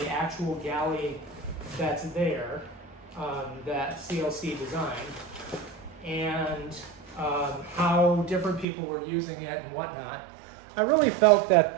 actual galley that's there, that CLC designed, and how different people were using it and whatnot, I really felt that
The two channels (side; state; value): left; drops out; at 8.7 s